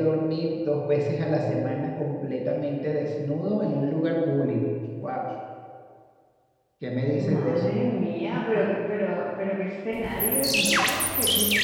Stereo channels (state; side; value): identical; both; correlation 1.00